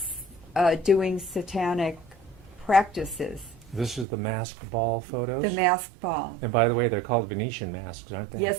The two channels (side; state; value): left; drops out; at 4.0 s